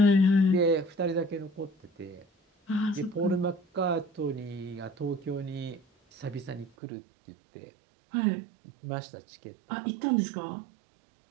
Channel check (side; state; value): left; drops out; at 6.7 s